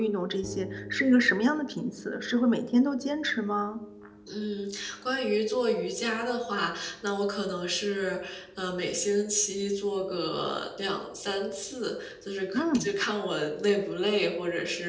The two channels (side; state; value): both; identical; correlation 1.00